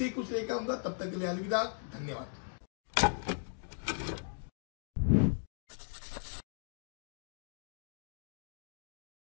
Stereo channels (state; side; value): silent; right; digital silence